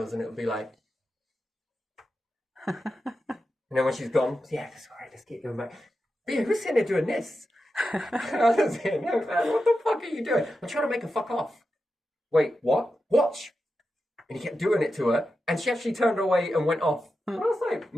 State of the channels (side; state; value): both; normal; correlation 0.90